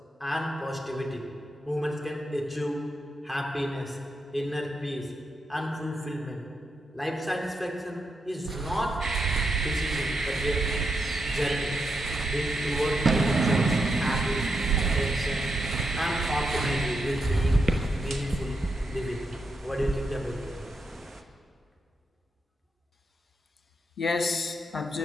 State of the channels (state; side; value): normal; both; correlation 0.84